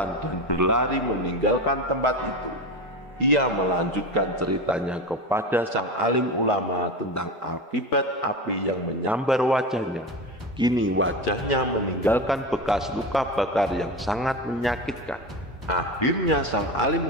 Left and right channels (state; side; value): normal; both; correlation 0.24